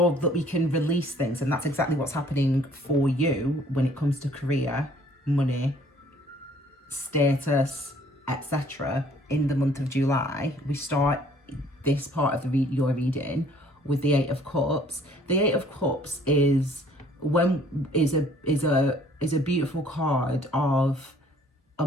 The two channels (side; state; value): both; normal; correlation 0.58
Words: that we can release things. And that's exactly what's happening for you when it comes to career, money, status, etc. In the month of July, we start this part of your reading with the 8 of Cups. The 8 of Cups is is a beautiful card of